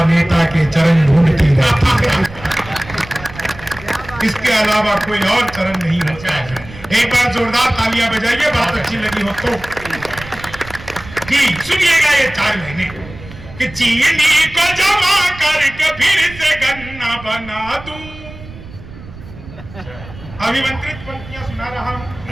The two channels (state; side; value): noise; right; rumble, 16 dB below the sound